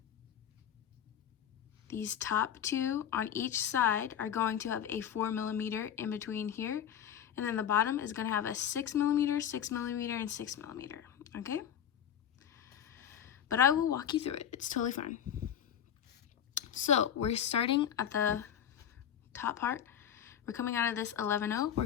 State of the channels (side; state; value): right; quieter; 9.3 dB